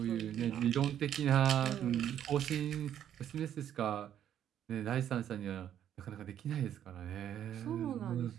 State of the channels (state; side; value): quieter; left; 10.3 dB